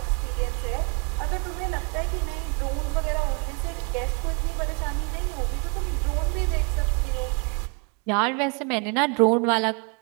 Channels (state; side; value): quieter; left; 35.6 dB